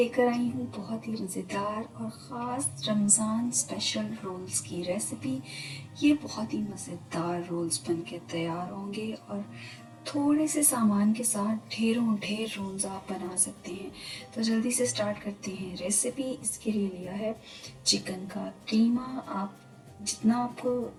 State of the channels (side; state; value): both; identical; correlation 1.00